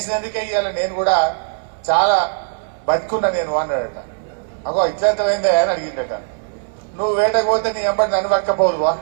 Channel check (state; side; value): silent; left; 66 dB below the other